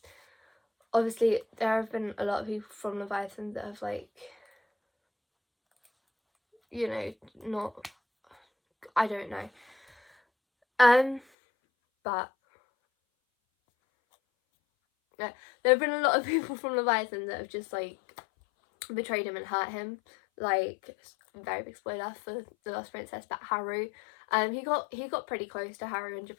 obviously there have been a lot of people from Leviathan that have, like, you know, not, I don't know, but yeah, there have been a lot of people from Leviathan that have just like betrayed him and hurt him. Like, very big spoiler for The Lost Princess, but Haru, he got pretty close to Haru in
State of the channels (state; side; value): drops out; right; at 11.2 s